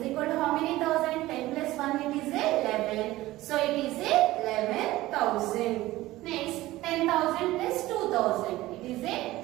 equal to how many thousand? 10 plus 1 it is 11. So it is 11,000. Next, 10,000 plus 2,000 it is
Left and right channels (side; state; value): left; quieter; 17.2 dB